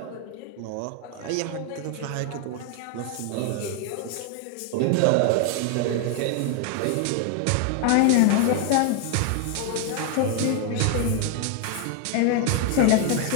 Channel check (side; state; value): both; different; correlation 0.00